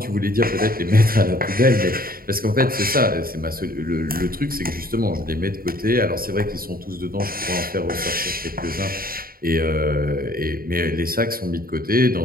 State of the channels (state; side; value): late; left; 0.43 ms